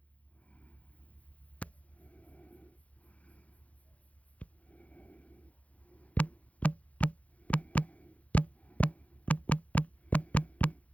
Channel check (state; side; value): late; right; 0.067 ms